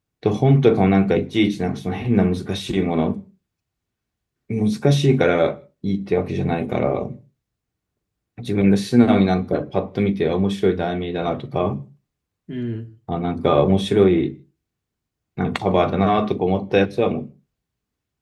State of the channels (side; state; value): both; identical; correlation 1.00